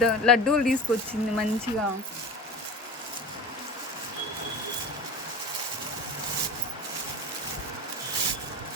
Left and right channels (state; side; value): normal; both; correlation 0.33